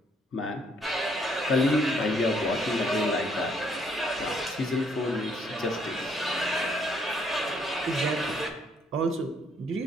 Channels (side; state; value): both; normal; correlation 0.68